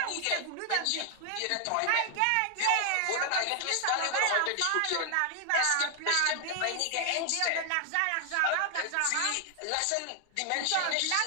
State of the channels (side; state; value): both; different; correlation 0.00